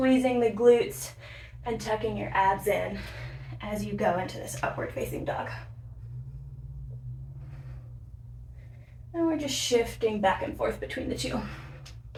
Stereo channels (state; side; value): identical; both; correlation 1.00